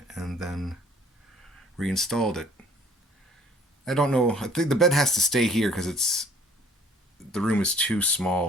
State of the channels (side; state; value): both; normal; correlation 0.55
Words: and then reinstalled it. I don't know, I think the bed has to stay here because the room is too